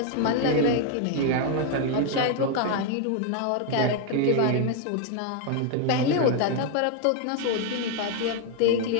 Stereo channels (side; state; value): both; different; correlation 0.00